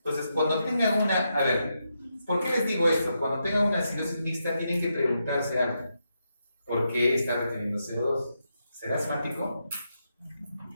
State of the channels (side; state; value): both; inverted; correlation -0.83